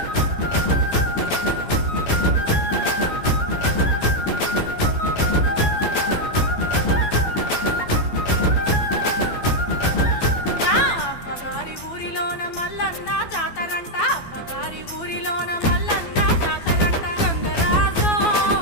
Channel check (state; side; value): late; right; 12 ms